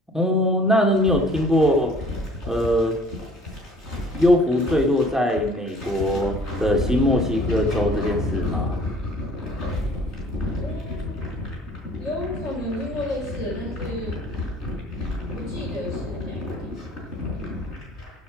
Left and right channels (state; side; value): normal; both; correlation 0.53